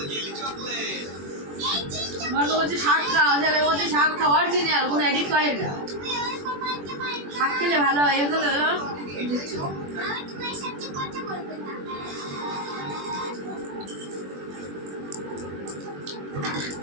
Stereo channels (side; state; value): left; late; 21 ms